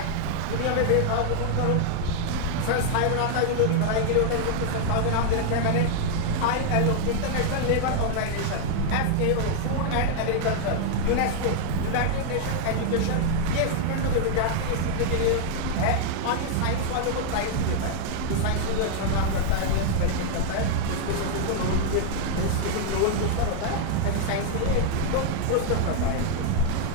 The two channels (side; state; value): both; different; correlation 0.00